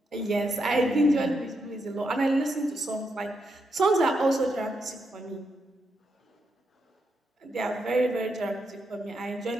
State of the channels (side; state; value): both; normal; correlation 0.82